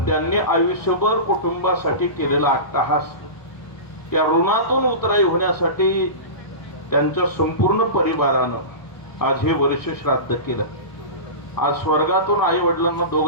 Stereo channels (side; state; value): right; late; 1.2 ms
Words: त्यांनी आयुष्यभर कुटुंबासाठी केलेला अट्टहास, त्या ऋणातून उतराई होण्यासाठी त्यांच्या संपूर्ण परिवारानं आज हे वर्ष श्राद्ध केलं. आज स्वर्गातून आई वडिलांना